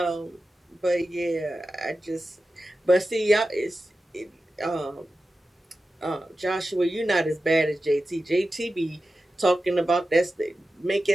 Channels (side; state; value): both; normal; correlation 0.93